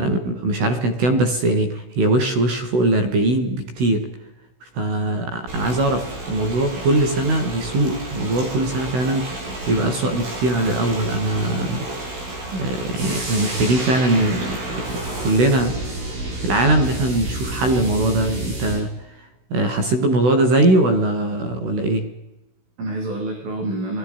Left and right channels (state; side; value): late; left; 16 ms